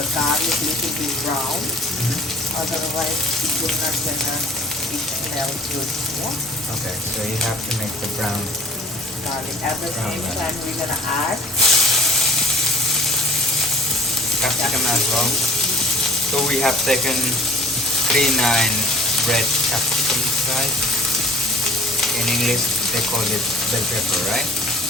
little bit brown. Otherwise, it will not gonna smell good. Yeah. Okay, so you have to make the brown Garlic. At the same time, we're gonna add capsicum as well. So we have taken 3 red capsicum right? In English they call it bell pepper, right?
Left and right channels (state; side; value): normal; both; correlation 0.49